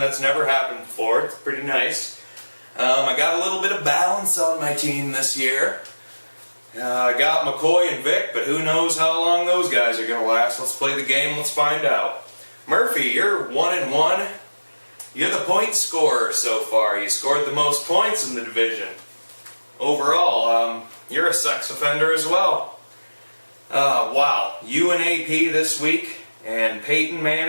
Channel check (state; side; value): inverted; both; correlation -1.00